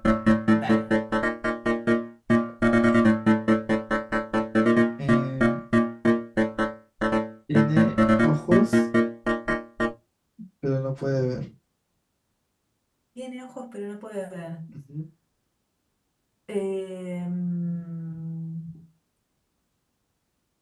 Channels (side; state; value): both; identical; correlation 1.00